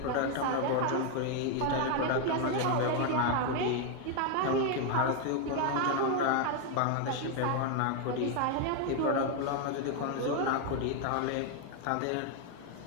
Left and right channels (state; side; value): different; both; correlation 0.01